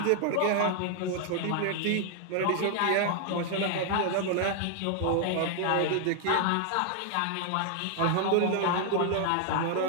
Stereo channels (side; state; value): both; different; correlation 0.00